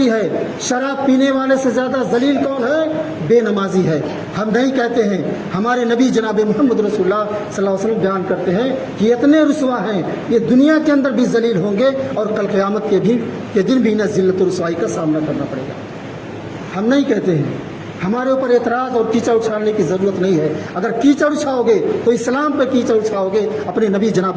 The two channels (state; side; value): identical; both; correlation 1.00